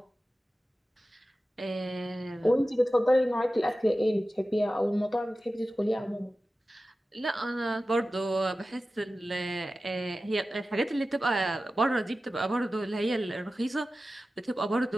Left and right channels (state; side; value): normal; both; correlation 0.95